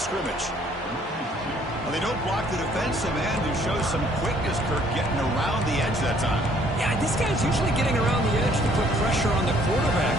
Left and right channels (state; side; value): normal; both; correlation 0.62